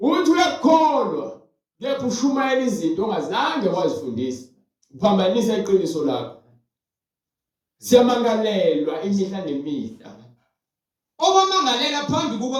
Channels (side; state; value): both; identical; correlation 1.00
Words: uyakholwa kepha ushumayela izinto ongazange wazifundisa. Uphambanisa iqiniso lakho. Siyamangalelwa imihla nemihla. Obamangalela phambi